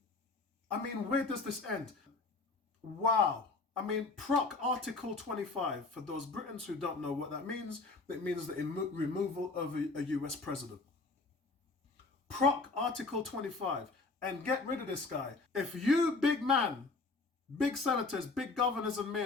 I mean, where does this end? Wow. I mean, PROC Article 25, for those Britons who don't know what that means, it means the removal of a US president. PROC Article 25, and get rid of this guy. If you, big man, big senators, big governors and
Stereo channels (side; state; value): right; quieter; 3.7 dB